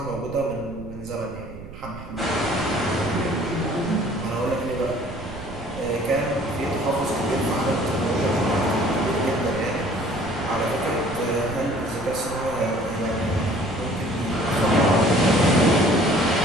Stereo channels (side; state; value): right; noise; rumble, 14 dB below the sound